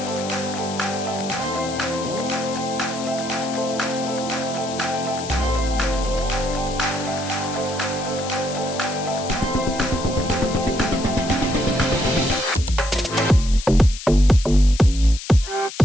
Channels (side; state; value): left; noise; hiss, 11 dB below the sound